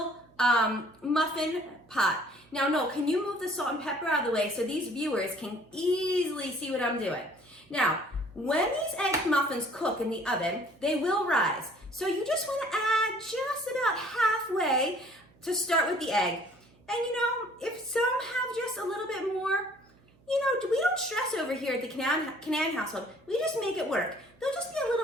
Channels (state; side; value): noise; right; hum, 30 dB below the sound